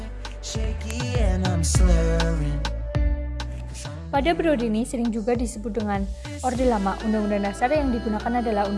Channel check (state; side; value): identical; both; correlation 1.00